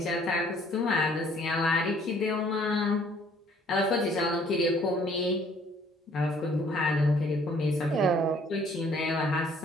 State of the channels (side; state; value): both; normal; correlation 0.59